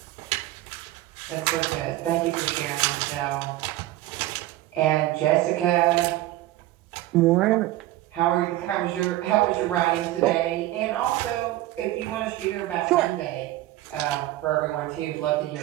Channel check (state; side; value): quieter; left; 15.9 dB